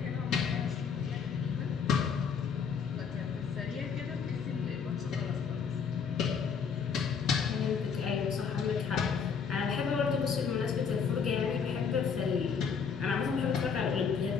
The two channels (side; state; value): right; quieter; 6.4 dB